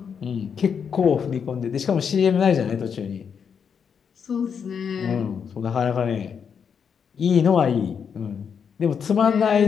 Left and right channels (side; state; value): right; quieter; 6.9 dB